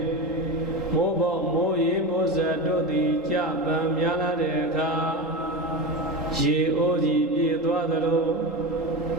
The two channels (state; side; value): normal; both; correlation 0.21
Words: မိုးပေါမိုးရေမိုးစက်တို့သည်ကြပံများလာတဲ့အခါရေအိုးကြီးပြေသွားသလို